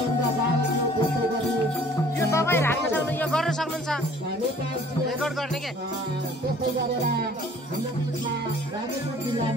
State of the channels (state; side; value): normal; both; correlation 0.53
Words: बाबु, त्यस्तै गरी यो तपाईँ राख्न सक्नु, यो गर्न सक्नुहुन्छ रेकर्ड गर्ने के। त्यस्तै गरेर हाम्रो बिचमा रामेश्वर